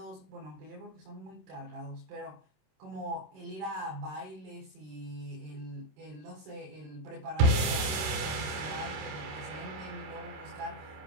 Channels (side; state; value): left; late; 27 ms